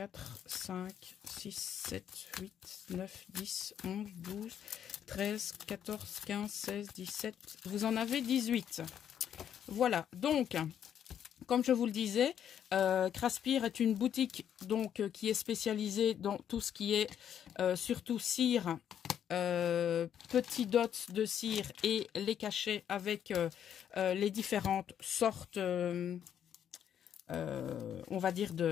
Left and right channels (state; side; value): quieter; right; 9.3 dB